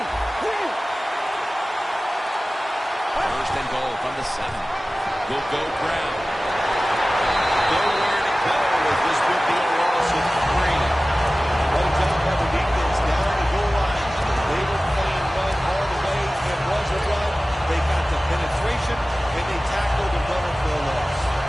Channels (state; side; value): normal; both; correlation 0.97